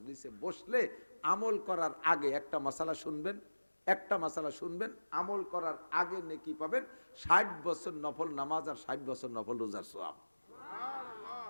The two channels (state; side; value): inverted; both; correlation -1.00